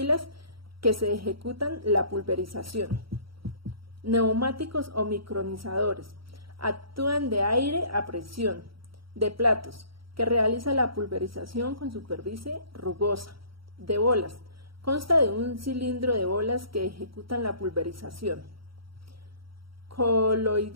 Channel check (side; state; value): left; late; 0.74 ms